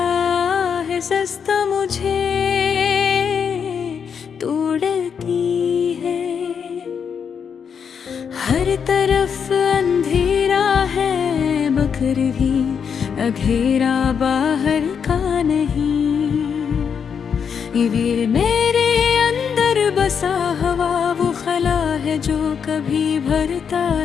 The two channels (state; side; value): quieter; right; 7.0 dB